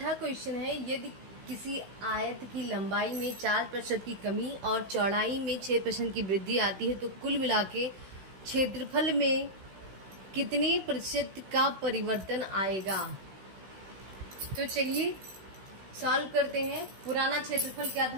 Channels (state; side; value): late; left; 16 ms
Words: क्वेश्चन है, यदि किसी आयत की लंबाई में 4% की कमी और चौड़ाई में 6% की वृद्धि आती है तो कुल मिला के क्षेत्रफल में कितने प्रतिशत का परिवर्तन आएगा। तो चलिए सॉल्व करते हैं। पुराना क्षेत्रफल क्या